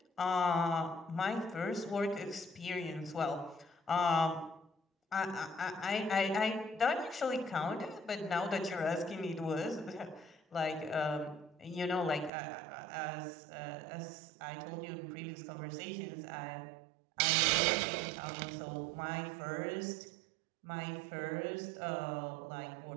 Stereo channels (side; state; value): left; drops out; at 12.3 s